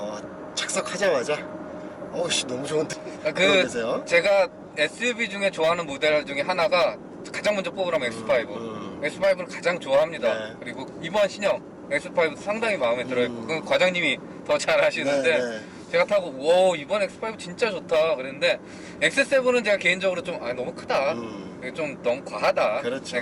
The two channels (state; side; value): identical; both; correlation 1.00